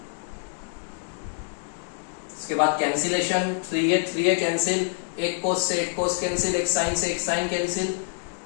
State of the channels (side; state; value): right; silent; digital silence